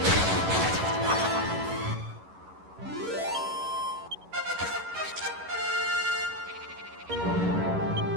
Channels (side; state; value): left; late; 11 ms